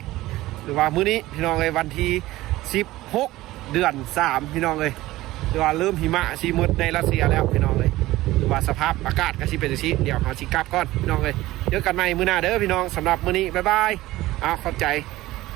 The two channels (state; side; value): quieter; left; 17.3 dB